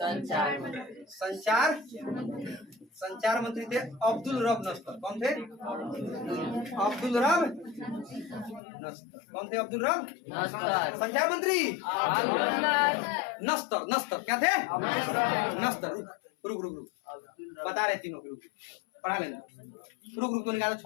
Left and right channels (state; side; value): drops out; right; at 8.6 s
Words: संचार, संचार मंत्री थे अब्दुल रब नस्तर। कौन थे? अब्दुल रब नस्तर। कौन थे? अब्दुल रब नस्तर। संचार मंत्री नस्तर। नस्तर क्या थे? नस्तर। रुक रुक रुक रुक, बता रहे तीनों के। रुक पढ़ा लेना। रुक रुक तो निकाल